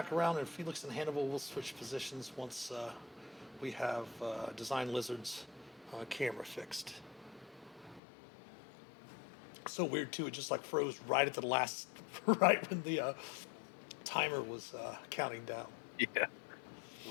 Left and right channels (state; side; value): drops out; right; at 8.0 s